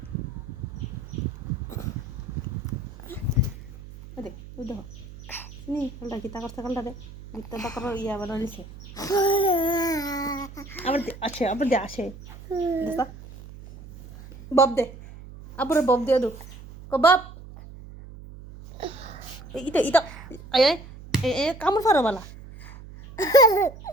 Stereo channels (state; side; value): noise; right; hum, 16 dB below the sound